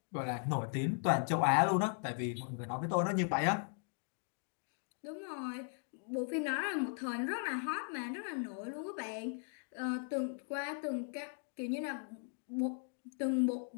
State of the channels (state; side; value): silent; right; 52 dB below the other